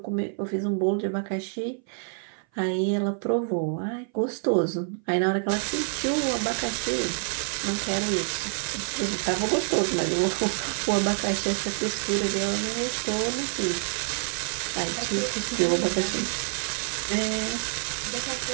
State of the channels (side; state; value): left; silent; 57 dB below the other